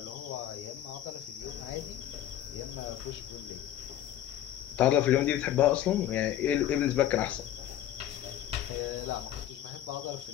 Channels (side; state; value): right; quieter; 11.8 dB